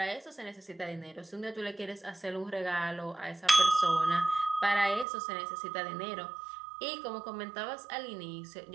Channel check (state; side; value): drops out; left; at 5.1 s